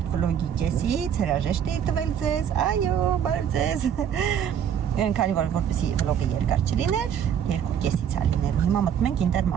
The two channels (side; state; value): left; quieter; 8.8 dB